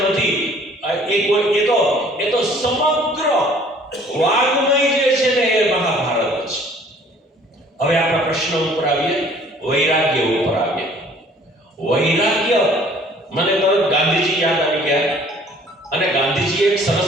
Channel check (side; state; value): both; normal; correlation 0.55